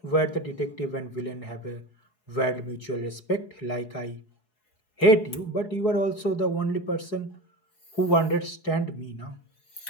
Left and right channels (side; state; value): right; late; 4.7 ms